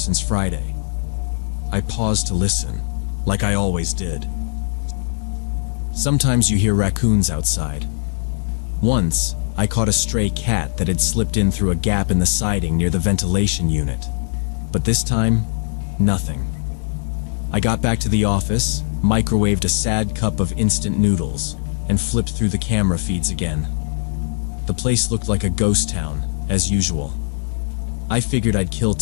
Friday. I paused to listen, like I always did. Sometimes you hear raccoons outside. Once, I caught a stray cat that had slipped in through a gap in the siding near the ventilation unit. But this time, nothing. I got back to the office, microwaved a sad cup of instant noodles, and flipped through the camera feeds again. The place looked like a ghost town, as usual. I figured I'd kill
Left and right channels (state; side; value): silent; right; digital silence